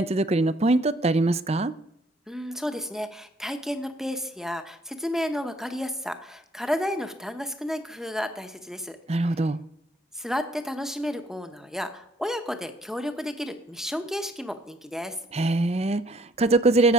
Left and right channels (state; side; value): normal; both; correlation 0.64